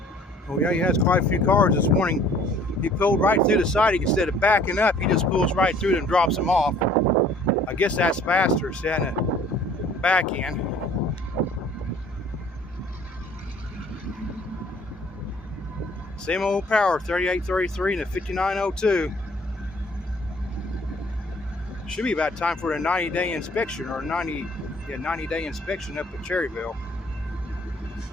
Oh yeah, he has quite a few cars this morning. He pulled right through the siding instead of backing up. He just pulls right through and drops them off. I guess that's faster than the back end. Same old power, 3833 and a 5902. Should be about time for a 90-day inspection or 90-day inspection up at Cherryville.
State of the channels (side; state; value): both; normal; correlation 0.55